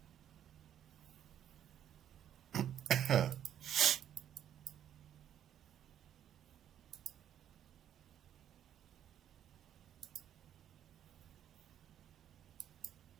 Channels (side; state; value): left; quieter; 10.2 dB